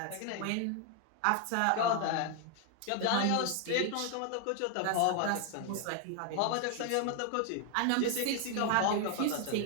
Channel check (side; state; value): both; different; correlation 0.00